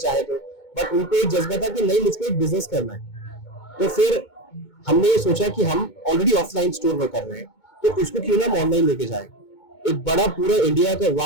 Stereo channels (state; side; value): late; right; 2.2 ms